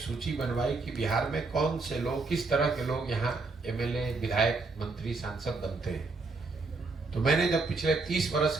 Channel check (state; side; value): quieter; left; 3.8 dB